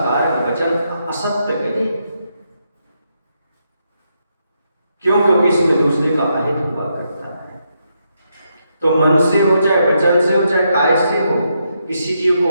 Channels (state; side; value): inverted; both; correlation -0.80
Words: वचन असत्य कहे क्यों? क्योंकि इसमें दूसरे का अहित हुआ करता है। तो मन से हो, चाहे वचन से हो, चाहे काय से हो, किसी जीव को